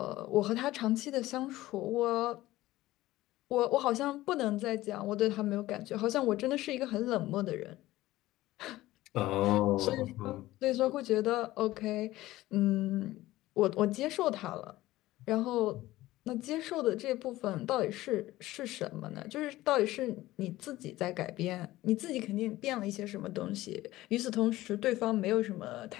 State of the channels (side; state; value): right; quieter; 16.8 dB